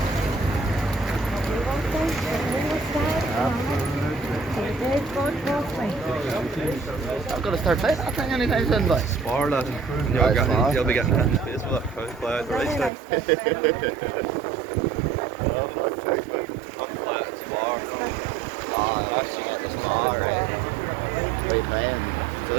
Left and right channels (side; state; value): left; drops out; at 12.9 s